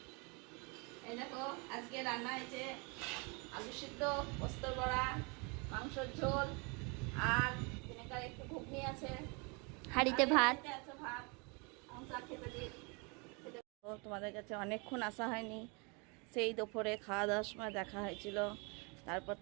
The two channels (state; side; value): quieter; left; 31.5 dB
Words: এই দেখো আজকে রান্না হয়েছে আলু সিদ্ধ, পোস্তর বড়া, মাংসর ঝোল, আর ভিনেগার একটু ঘুগনি আছে, হাঁড়িতে ভাত আছে, ভাত খেতে দিই। তোমাদের কাছে অনেকক্ষণ আসা হয়নি, সেই দুপুরে খাওয়া দাওয়ার সময় দেখা হয়েছিল, তারপর